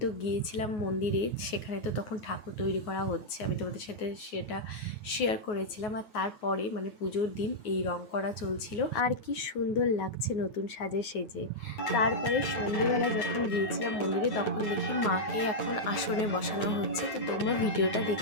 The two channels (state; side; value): late; right; 9.5 ms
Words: তো গিয়েছিলাম মন্দিরে, সেখানে তো তখন ঠাকুর তৈরি করা হচ্ছে, আমি তোমাদের সাথে সেটা শেয়ার করেছিলাম। আর তারপরে মানে পুজোর দিন এই রং করা চলছিল, আর কি সুন্দর লাগছে নতুন সাজে সেজে। তারপরে সন্ধ্যেবেলা যখন গিয়েছিলাম মন্দিরে, তখন দেখি মাকে এখন আসনে বসানো হচ্ছে। তো তোমরা ভিডিওটা